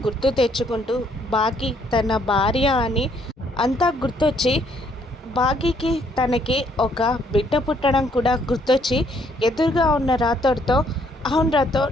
గుర్తు తెచ్చుకుంటూ బాకీ తన భార్య అని అంతా గుర్తొచ్చి బాకీకి తనకి ఒక బిడ్డ పుట్టడం కూడా గుర్తొచ్చి ఎదురుగా ఉన్న రాథోడ్‌తో, అవును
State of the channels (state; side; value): normal; both; correlation 0.67